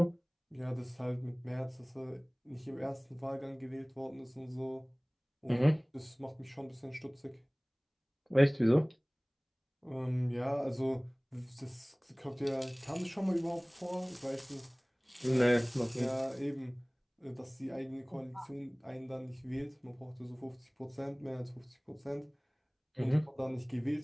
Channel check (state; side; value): identical; both; correlation 1.00